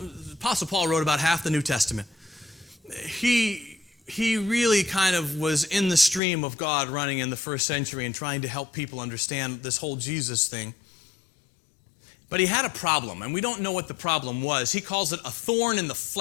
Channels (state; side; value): drops out; right; at 6.2 s